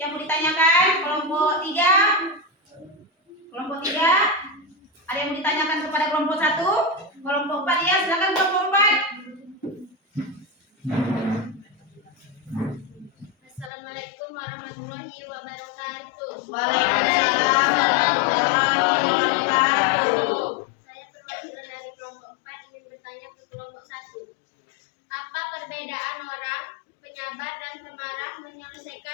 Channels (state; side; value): drops out; right; at 13.7 s